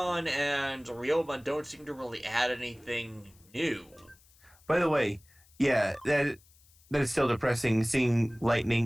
and Ryomon don't seem to really add anything new. By the way, yeah, that is still depressing seeing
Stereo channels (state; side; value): noise; left; hiss, 29 dB below the sound